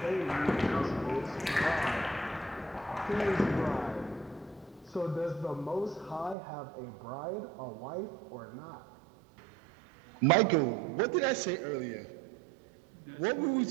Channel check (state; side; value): drops out; left; at 6.4 s